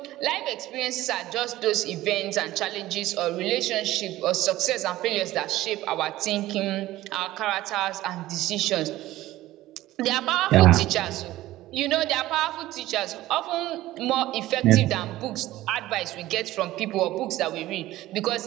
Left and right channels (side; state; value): left; quieter; 16.0 dB